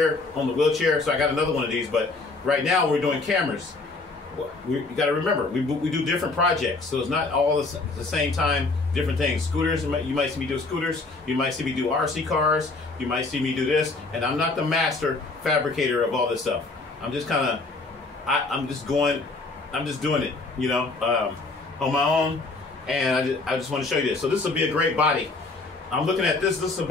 on the wheelchair, so I got another one of these. But right now we're doing cameras. You got to remember, we do different projects, so it's not all the same time, different things. Scooters, you might see me do scooters, you might see me do RC cars, you might see me do this, and I'm not the master fabricator of all this stuff. I'm just kind of, I'm just doing it, you know, on my own, and I just want to show you this. So this will be a great body. I'm looking at this. This is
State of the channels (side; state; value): right; quieter; 3.5 dB